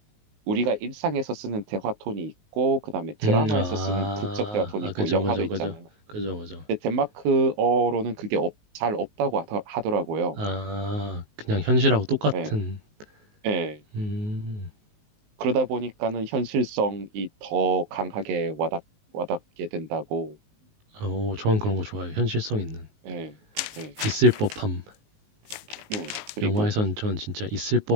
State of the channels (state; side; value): late; left; 19 ms